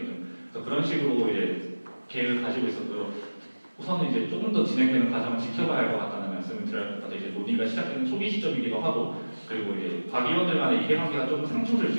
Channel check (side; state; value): both; inverted; correlation -1.00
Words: 그래서 그런 식으로 이제 계획을 가지고 있어도 우선은 이제 조금 더 진행되는 과정을 지켜봐야 할 것 같다는 말씀을 드려야 할 것 같아요. 이제 논의가 시작되는 초기 시점이기도 하고, 그리고 이제 과기원들 간의 이해관계가 좀 상충될